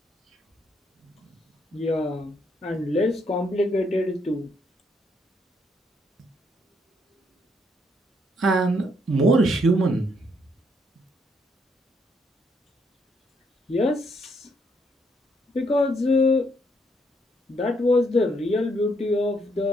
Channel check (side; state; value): both; normal; correlation 0.73